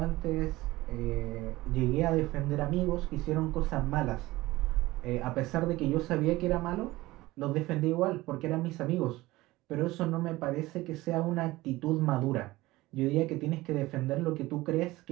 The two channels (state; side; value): quieter; left; 18.9 dB